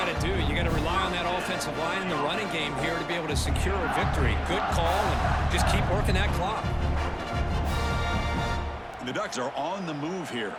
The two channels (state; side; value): identical; both; correlation 1.00